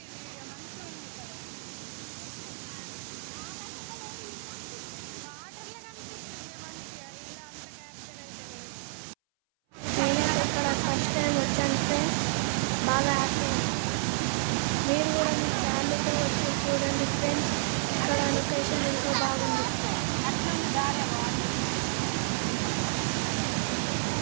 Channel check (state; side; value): silent; left; 58 dB below the other